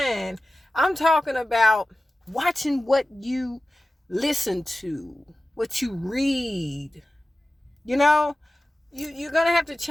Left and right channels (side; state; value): both; normal; correlation 0.95